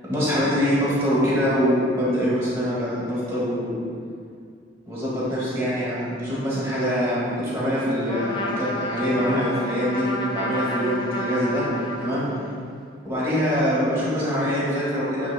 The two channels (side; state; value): both; normal; correlation 0.47